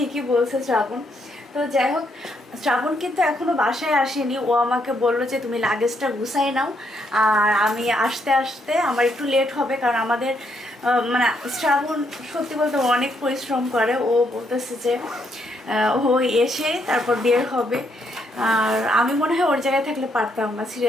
বলছে শ্রাবণ। তো যাই হোক, শ্রাবণ কিন্তু এখনো বাসায় আসেনি। ও আমাকে বললো যে তুমি লাগেজটা গুছাই নাও, আর আমি আসতে আসতে আমার একটু লেট হবে, কারণ আমাদের মানে শ্রাবণ সত্যি বলতে অনেক পরিশ্রম করে। ও বলতেছে যে ও এসে তারপর বের হবে। আর আমি মনে হয় ওর জায়গায় থাকলে পারতাম না,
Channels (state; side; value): normal; both; correlation 0.75